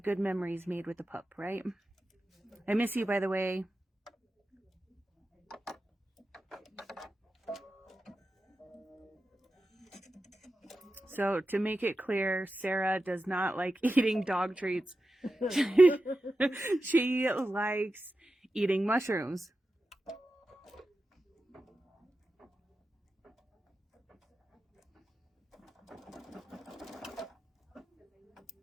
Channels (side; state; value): both; normal; correlation 0.92